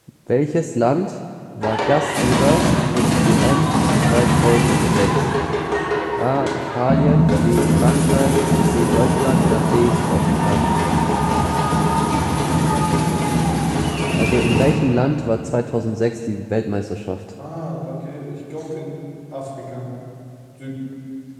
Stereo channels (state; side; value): identical; both; correlation 1.00